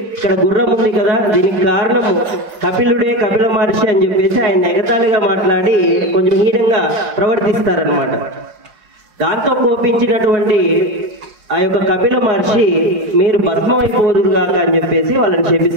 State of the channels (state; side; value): late; left; 4.7 ms